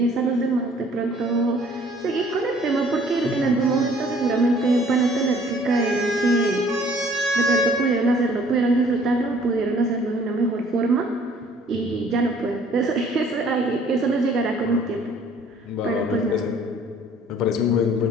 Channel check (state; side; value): normal; both; correlation 0.56